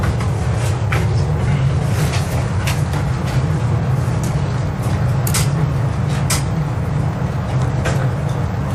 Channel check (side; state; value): both; identical; correlation 1.00